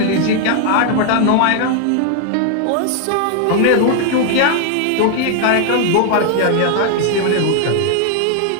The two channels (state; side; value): different; both; correlation 0.00